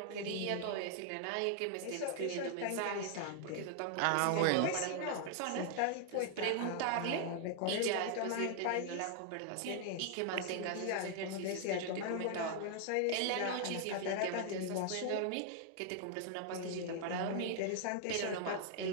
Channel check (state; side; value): different; both; correlation 0.00